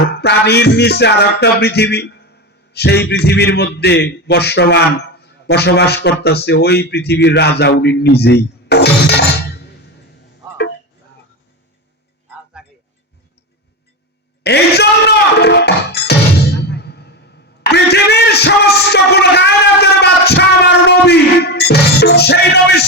পানির নিচে আর একটা পৃথিবী, সেই পৃথিবীর মধ্যে বসবাস করতেছে। ওই পৃথিবীর রাজা উনি নিজেই। এই জন্য পৃথিবীর সেই নবী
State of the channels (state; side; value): normal; both; correlation 0.19